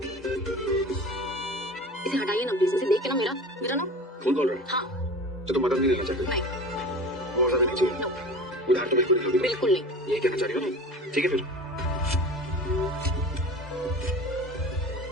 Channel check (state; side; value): normal; both; correlation 0.36